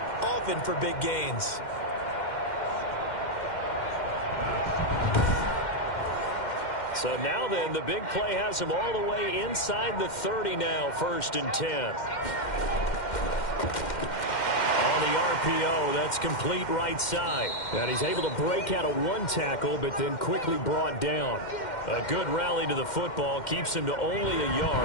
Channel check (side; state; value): right; late; 2.1 ms